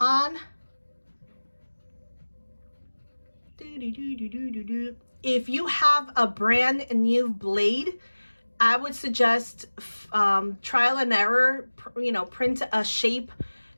If you have a brand new blade, I would suggest trial and error, you know, print a shape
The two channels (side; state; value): both; inverted; correlation -1.00